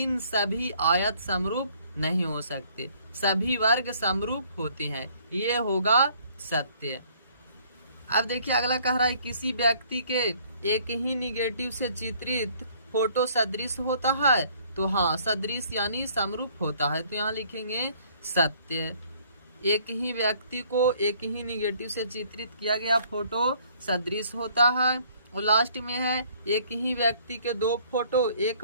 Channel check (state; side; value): inverted; both; correlation -0.60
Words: सभी आयत समरूप नहीं हो सकते। सभी वर्ग समरूप होते हैं, ये होगा सत्य। अब देखिए अगला कह रहा है किसी व्यक्ति के एक ही निगेटिव से चित्रित फोटो सदृश होता है। तो हाँ, सदृश यानी समरूप होता है, तो यहाँ लिखेंगे सत्य। एक ही व्यक्ति को एक ही निगेटिव से चित्रित किया गया फोटो सदृश होता है। और लास्ट में है एक ही व्यक्ति के 2 फोटो 1